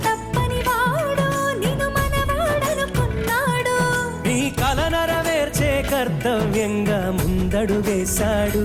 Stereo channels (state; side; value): identical; both; correlation 1.00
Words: తప్పని వాడు నిన్ను మనవాడనుకున్నాడు నీ కల నెరవేర్చే కర్తవ్యంగా ముందడు వేశాడు